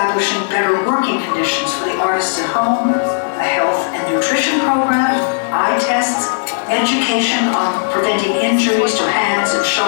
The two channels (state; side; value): silent; right; digital silence